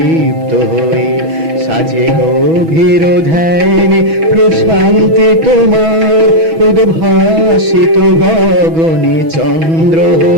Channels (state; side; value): late; left; 6.1 ms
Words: হয়ে। সাজে গভীর ধ্যানে প্রশান্তি তোমার, উদ্ভাসিত গগনে চন্দ্র